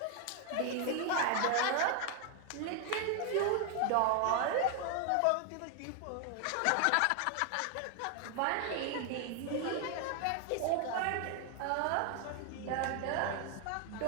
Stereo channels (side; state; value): both; different; correlation 0.00